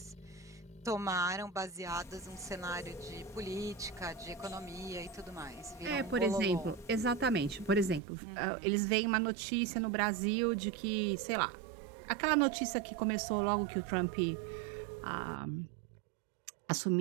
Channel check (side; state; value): left; drops out; at 8.0 s